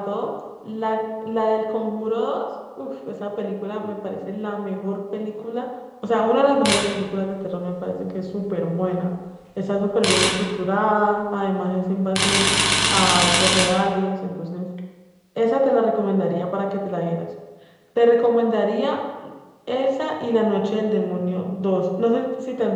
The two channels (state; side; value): identical; both; correlation 1.00